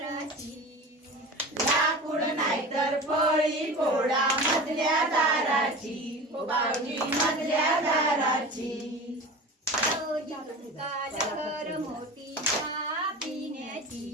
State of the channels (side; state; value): both; normal; correlation 0.33